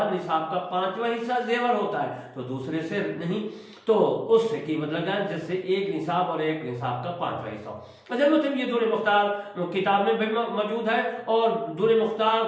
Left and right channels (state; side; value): identical; both; correlation 1.00